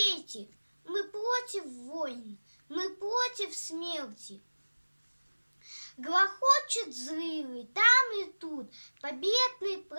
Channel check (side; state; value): both; inverted; correlation -1.00